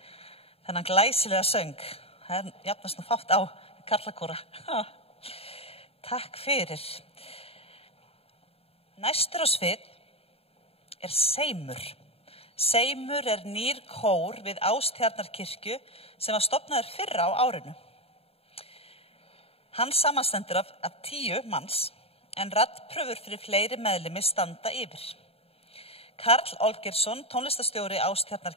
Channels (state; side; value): late; right; 0.28 ms